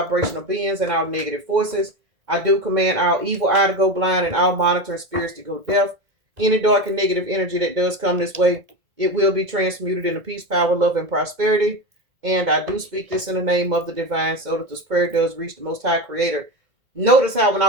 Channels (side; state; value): left; late; 2.2 ms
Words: beings and all negative forces. I do command all evil eye to go blind and all monitoring spirits to go deaf. Any dark and negative energy that does come this way, it will be transmuted into peace, power, love, and prosperity. And I do speak this in the name of the divine so that this prayer does reach the Most High Creator. Notice how when I